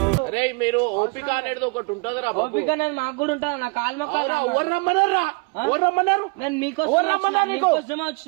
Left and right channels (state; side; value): quieter; left; 31.1 dB